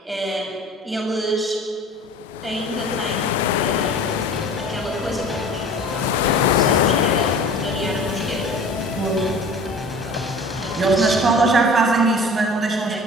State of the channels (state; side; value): normal; both; correlation 0.42